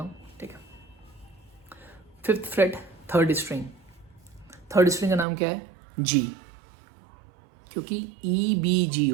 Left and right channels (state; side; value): drops out; left; at 5.2 s